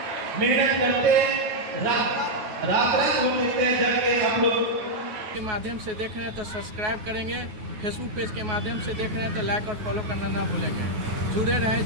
मेहनत करते रात होते हैं जब के आप लोग के माध्यम से देख रहे हैं तो सब्सक्राइब करेंगे, फेसबुक पेज के माध्यम से देख रहे हैं तो लाइक और फॉलो करना ना भूलेंगे। जुड़े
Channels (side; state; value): left; late; 9.4 ms